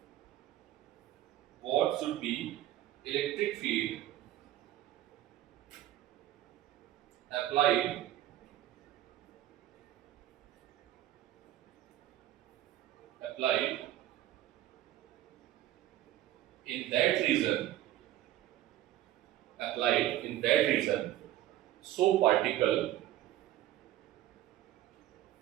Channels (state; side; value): quieter; left; 13.7 dB